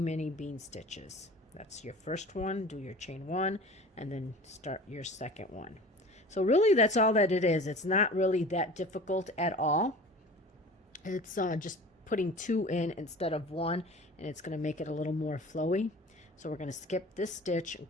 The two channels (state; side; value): normal; both; correlation 0.40